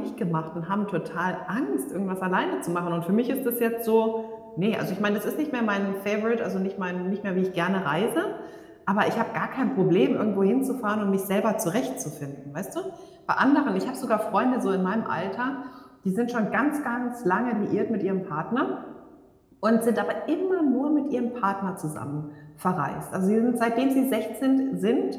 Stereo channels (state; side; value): identical; both; correlation 1.00